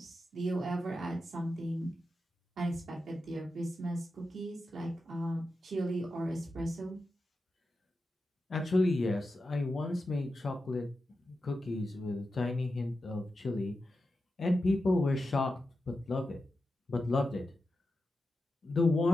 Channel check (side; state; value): both; normal; correlation 0.90